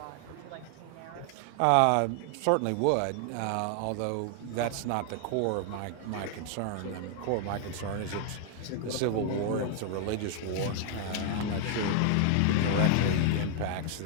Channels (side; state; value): both; different; correlation 0.00